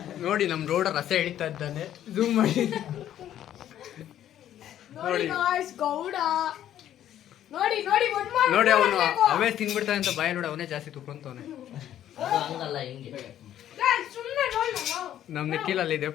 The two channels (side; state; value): right; quieter; 11.3 dB